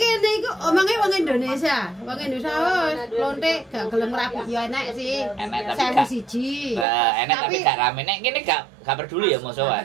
iku omonge wong Indonesia. Wong Indonesia lonte gak gelem rapi ya enek sih. Enek tapi Sewu gak. siji. Enek tapi gak rame. Nek kene gak peduli ya mosok wae.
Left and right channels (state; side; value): drops out; left; at 6.9 s